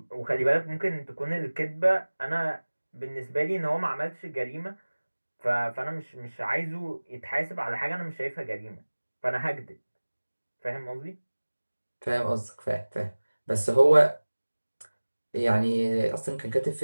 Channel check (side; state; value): both; inverted; correlation -1.00